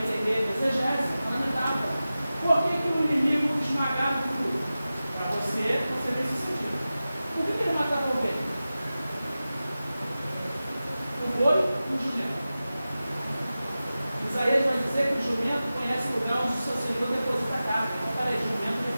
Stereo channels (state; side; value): inverted; both; correlation -0.95